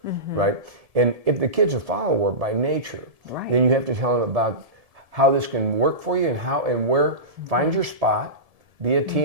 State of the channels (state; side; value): late; left; 1.7 ms